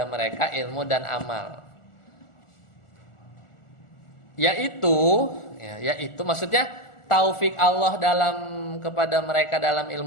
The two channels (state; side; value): late; right; 1.4 ms